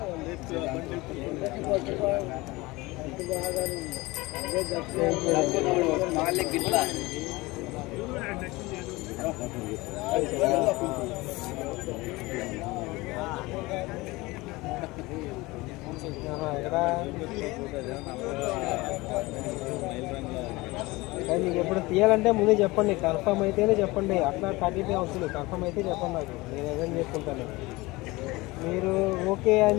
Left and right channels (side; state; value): right; quieter; 21.8 dB